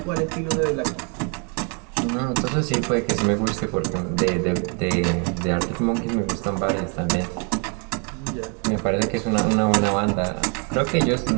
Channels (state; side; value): quieter; left; 36.9 dB